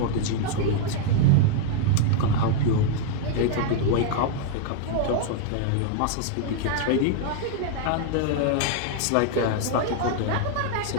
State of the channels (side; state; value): both; different; correlation 0.00